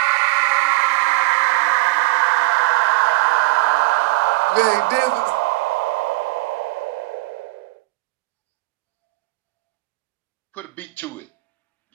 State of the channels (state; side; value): quieter; left; 22.2 dB